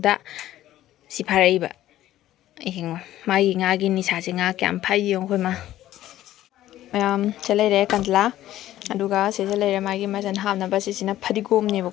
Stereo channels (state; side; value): quieter; right; 13.7 dB